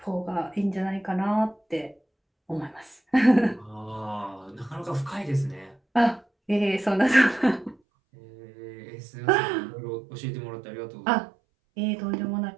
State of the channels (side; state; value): left; drops out; at 7.8 s